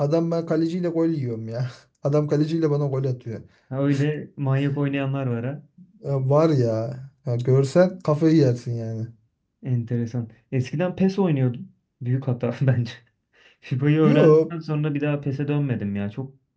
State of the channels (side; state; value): both; identical; correlation 1.00